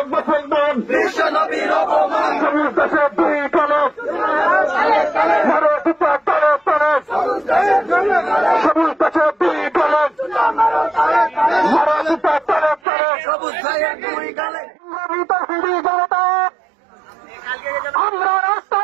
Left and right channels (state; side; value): drops out; left; at 12.8 s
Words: মুসলমান, বিশ্বনবীর অপমান, সবুজ দেশে দুই কালো, মারো দুটা তালে তালে, সবুজ দেশে দুই কালো, মারো দুটা তালে তালে, সবুজ ভাইয়ের দুই গালে। আমরা